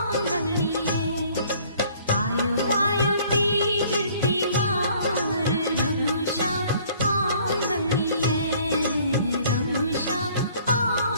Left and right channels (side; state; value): both; inverted; correlation -0.56